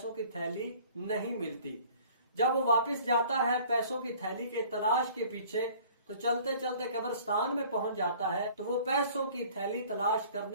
की थैली नहीं मिलती। जब वो वापस जाता है पैसों की थैली के तलाश के पीछे, तो चलते चलते कब्रिस्तान में पहुंच जाता है तो वो पैसों की थैली तलाश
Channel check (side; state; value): both; inverted; correlation -0.51